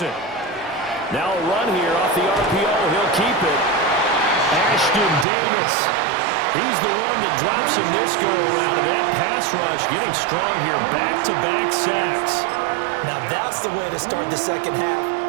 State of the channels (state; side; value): drops out; left; at 5.2 s